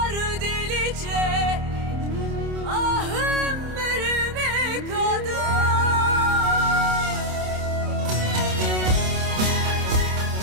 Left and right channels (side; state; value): left; late; 27 ms